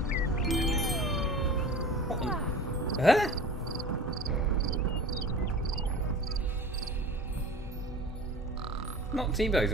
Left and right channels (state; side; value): normal; both; correlation 0.39